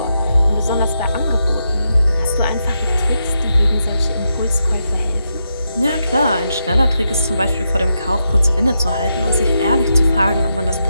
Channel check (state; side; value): inverted; both; correlation -0.84